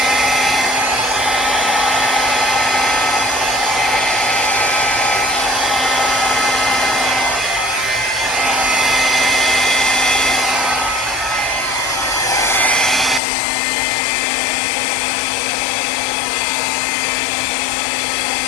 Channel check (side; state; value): right; drops out; at 13.2 s